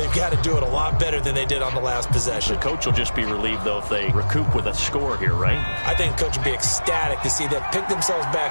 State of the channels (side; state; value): both; inverted; correlation -1.00